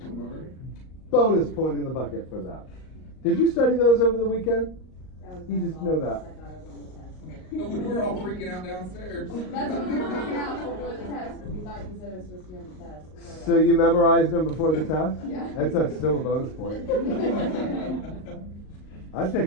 Bonus point in the bucket for that. Did you study those over the weekend? You just know that. We were all freaking out downstairs. That's what we were freaking out before the test, because we thought you said it was supposed to be on the test. So you memorized them before the test? Yeah. That's still a bonus point. I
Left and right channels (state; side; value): late; right; 38 ms